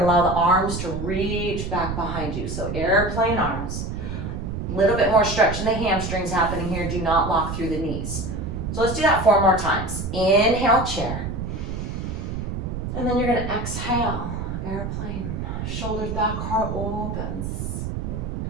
allow the arms to reach back behind you. So airplane arms. A little bit more stretch in the hamstrings happening here. Do not lock through the knees. So let's do that 4 more times. Inhale, chair. And then you're gonna exhale, airplane. Shoulders back, heart opens.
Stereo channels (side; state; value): right; noise; rumble, 4 dB below the sound